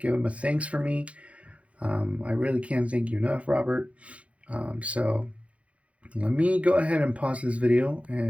him a thanks for me. I really can't thank you enough, Robert. So let me go ahead and pause this video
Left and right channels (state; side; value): late; left; 0.063 ms